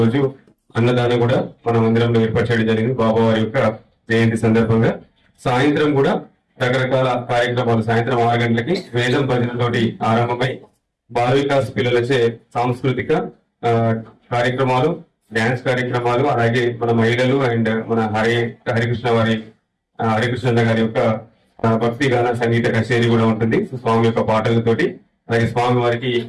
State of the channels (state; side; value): identical; both; correlation 1.00